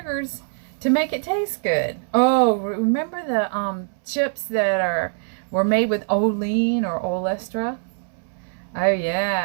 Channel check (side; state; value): left; silent; 63 dB below the other